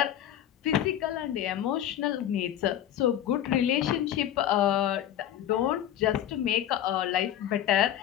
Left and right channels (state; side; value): quieter; right; 11.2 dB